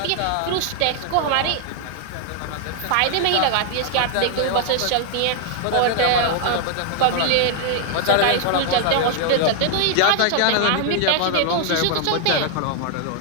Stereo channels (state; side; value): different; both; correlation 0.00